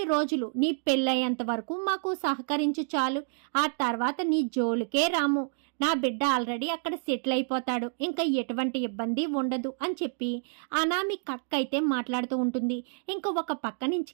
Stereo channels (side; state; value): left; silent; 59 dB below the other